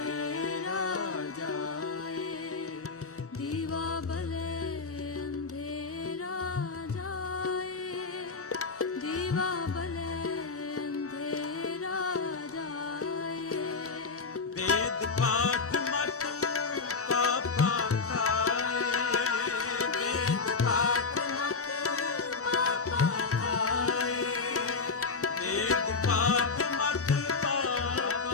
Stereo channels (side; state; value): right; quieter; 4.4 dB